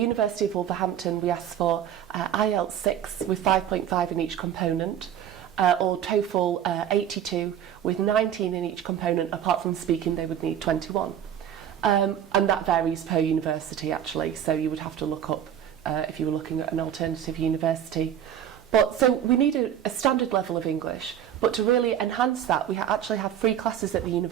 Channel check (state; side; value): quieter; left; 9.9 dB